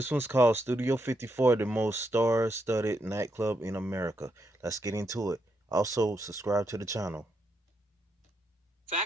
one's called Studio 54, the most star-studded nightclub in America. Let's get into it. Also, subscribe to the channel.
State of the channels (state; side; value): normal; both; correlation 0.80